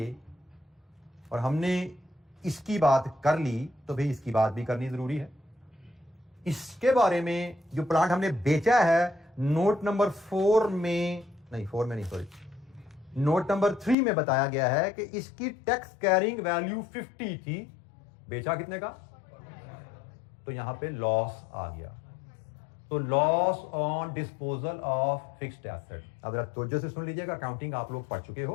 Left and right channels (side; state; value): right; drops out; at 14.0 s